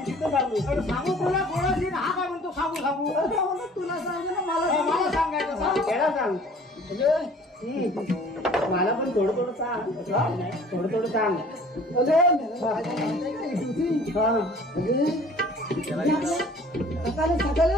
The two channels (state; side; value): normal; both; correlation 0.50